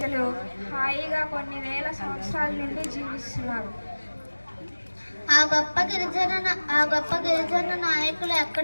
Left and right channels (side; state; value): both; inverted; correlation -1.00